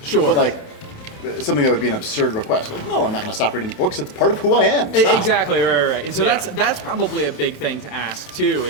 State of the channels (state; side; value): late; right; 28 ms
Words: Sure. But like, something that would be an absurd request. Like, no, I'm not going to stop reading books. It's part of who I am. Stop. Exactly, right. And so Yeah. that's probably a big thing to ask too.